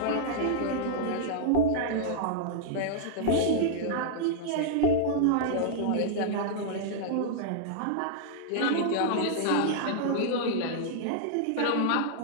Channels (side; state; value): both; different; correlation -0.02